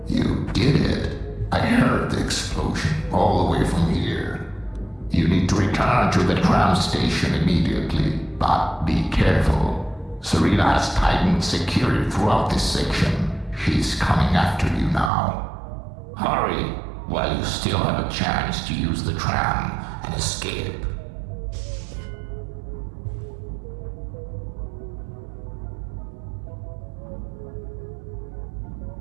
You did it. I heard the explosion all the way from here. You need to return to the tram station immediately, but be careful. Serena has tightened security throughout this section. She's coming after you now. Hurry, while you still have a chance to use the tram and escape.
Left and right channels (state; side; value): drops out; left; at 15.1 s